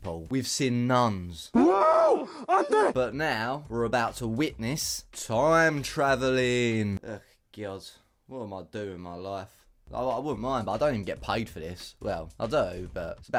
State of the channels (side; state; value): both; identical; correlation 1.00